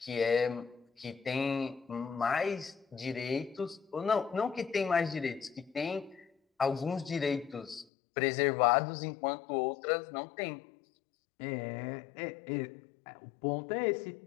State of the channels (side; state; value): right; drops out; at 7.9 s